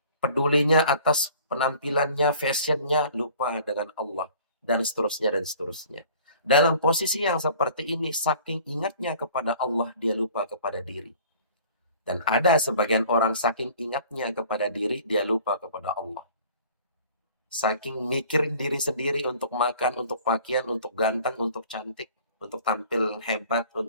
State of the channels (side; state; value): both; inverted; correlation -0.50